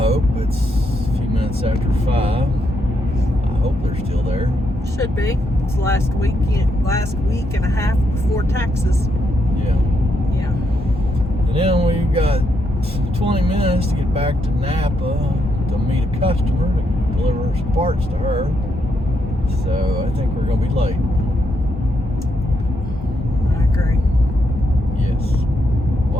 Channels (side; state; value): both; normal; correlation 0.79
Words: it's a few minutes after 5. I hope they're still there. Should be. It's last week and a half before taxes. Yeah. Yeah. And then we've got 20 minutes to get back to Napa to meet a customer to deliver some parts to her. So I think we're gonna be late. I agree. Yes.